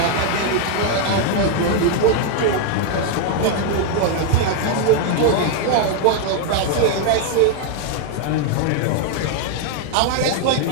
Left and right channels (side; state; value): both; different; correlation 0.00